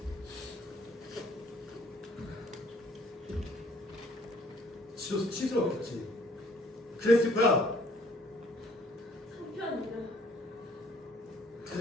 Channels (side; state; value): both; normal; correlation 0.59